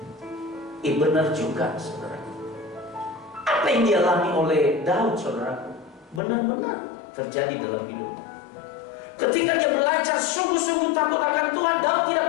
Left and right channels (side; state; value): right; drops out; at 6.2 s